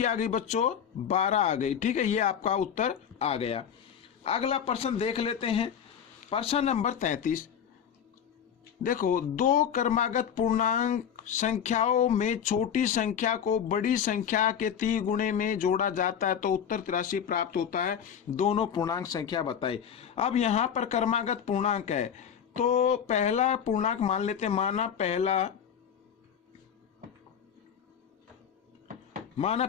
आ गई बच्चों? 12 आ गई। ठीक है, ये आपका उत्तर आ गया। अगला प्रश्न देख लेते हैं, प्रश्न नंबर 33। देखो, 2 क्रमागत पूर्णांक संख्याओं में छोटी संख्या को बड़ी संख्या के 3 गुणे में जोड़ा जाता है तो उत्तर 83 प्राप्त होता है। दोनों पूर्णांक संख्या बताए। अब यहाँ पर क्रमागत पूर्णांक है, तो पहला पूर्णांक मान लेते हैं, माना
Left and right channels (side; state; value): right; quieter; 8.2 dB